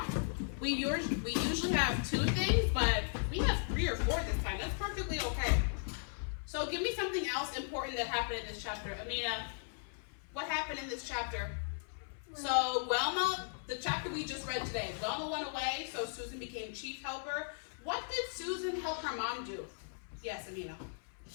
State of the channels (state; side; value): silent; right; 53 dB below the other